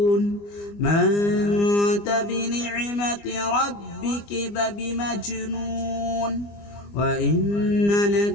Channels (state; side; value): late; right; 25 ms